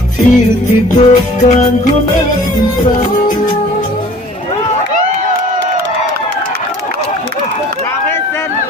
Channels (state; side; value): normal; both; correlation 0.50